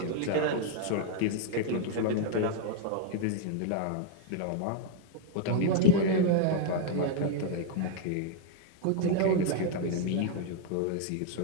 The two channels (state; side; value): different; both; correlation 0.00